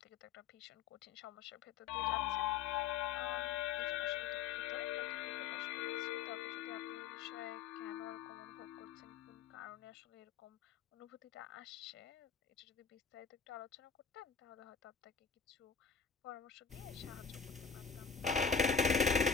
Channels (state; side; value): quieter; right; 6.2 dB